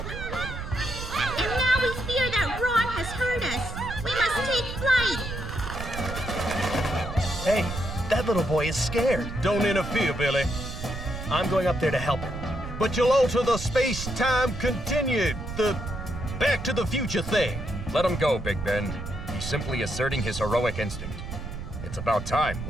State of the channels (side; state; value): right; noise; rumble, 7 dB below the sound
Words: And now we fear that Ron has heard us. We must take flight. Hey, that little boy is scared. Don't interfere, Billy. I'm going up there to help him. But you'll alter the space-time continued, the Back to the Future thing. Let him go, Big Ben. He's simply asserting his heroic instinct. It's about time,